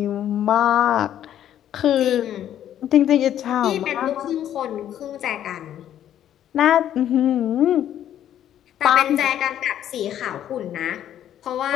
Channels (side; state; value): right; quieter; 10.9 dB